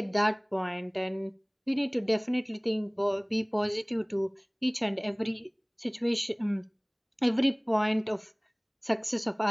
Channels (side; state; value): both; identical; correlation 1.00